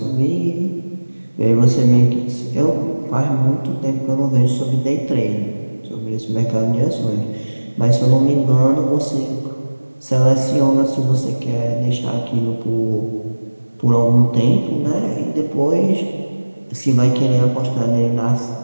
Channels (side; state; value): both; inverted; correlation -1.00